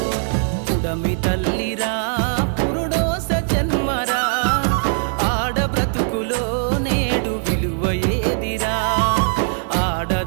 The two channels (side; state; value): left; silent; 66 dB below the other